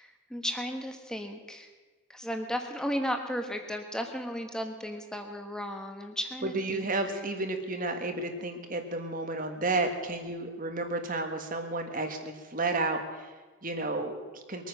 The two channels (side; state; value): both; normal; correlation 0.18